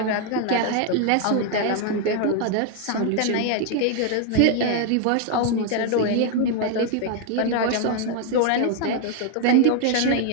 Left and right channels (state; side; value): different; both; correlation 0.00